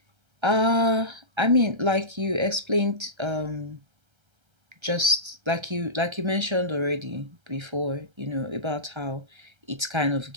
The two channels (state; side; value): late; left; 1.3 ms